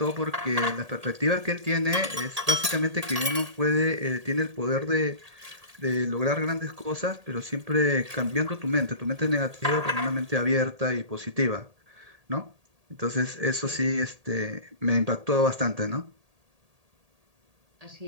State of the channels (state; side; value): late; left; 1.8 ms